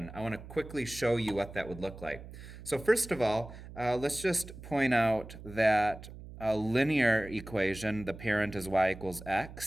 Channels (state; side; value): noise; right; hum, 14 dB below the sound